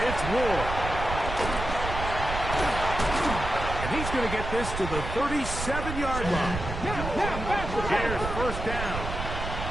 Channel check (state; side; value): noise; right; rumble, 5 dB below the sound